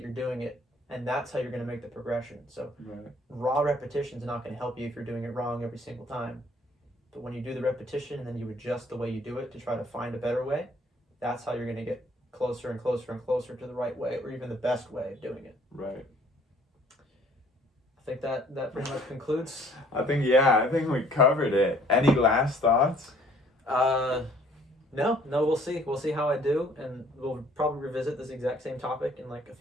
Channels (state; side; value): normal; both; correlation 0.58